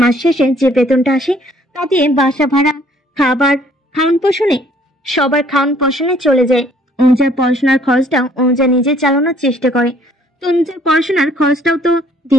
মাস শেষে যে বেতনটা আসে তা দিয়ে বাসা ভাড়া, খাবার, খাওয়ান পোষণে, সবার খাওয়ান পোষণে চলে যায়। অনুজার পড়াশোনার খরচটাও অনুজা নিজে চালানোর চেষ্টা করে। তো অনুজার পড়াশোনার খরচটাও তো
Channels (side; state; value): both; normal; correlation 0.61